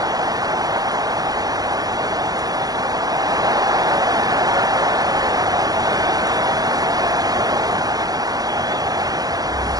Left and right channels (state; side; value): late; left; 0.18 ms